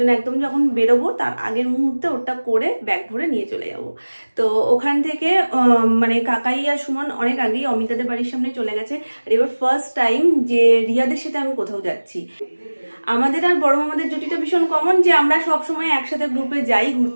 একদম যখন বেরোবো তার আগের মুহূর্তে ওটা করে ব্যাগ ভরে নিয়ে চলে যাব। তো ওখান থেকে মানে কাকাই আর সুমন অনেক আগেই অমিতাদের বাড়ির সামনে চলে গেছে। আর এবার ফার্স্ট টাইম যে রিয়াদের সাথে আমি কোথাও যাচ্ছি। আমাদের আর বড় মামাদের জুটিটা ভীষণ কমন যে আমরা সব সময় একসাথে গ্রুপে যাই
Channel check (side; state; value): both; inverted; correlation -1.00